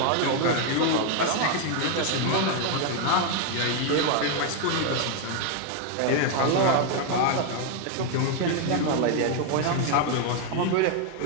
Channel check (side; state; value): both; different; correlation 0.01